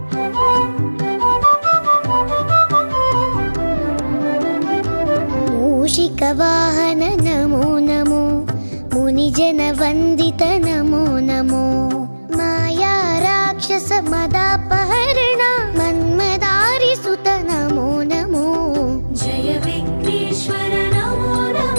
మూషిక వాహన నమో నమో, మునిజన వందిత నమో నమో, మాయా రాక్షస మదాపహరణ మన్మదారి సుత నమో నమో. జయ విఘ్నేశ్వర నమో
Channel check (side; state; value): both; inverted; correlation -1.00